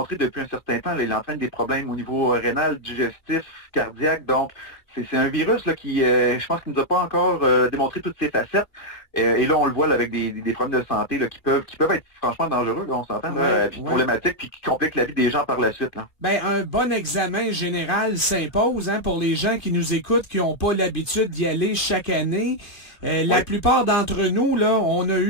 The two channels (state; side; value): late; right; 2.4 ms